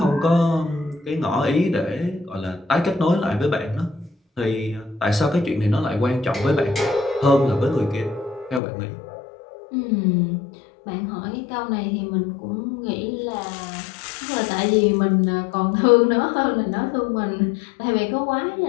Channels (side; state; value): right; drops out; at 8.6 s